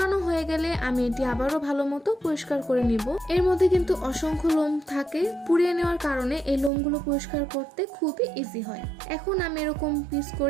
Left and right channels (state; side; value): drops out; left; at 6.7 s